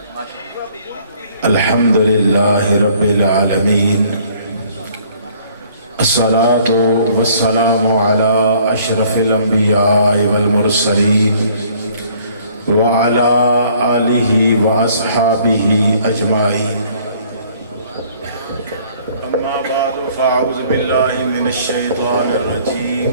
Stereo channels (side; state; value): both; inverted; correlation -0.59